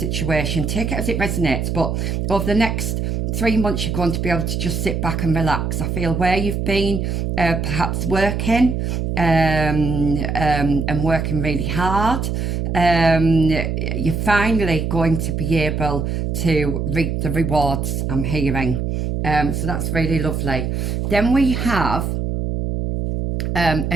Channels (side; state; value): right; noise; hum, 1 dB below the sound